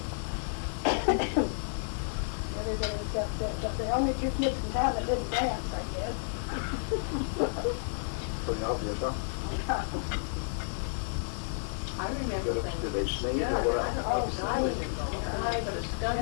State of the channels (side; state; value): right; silent; digital silence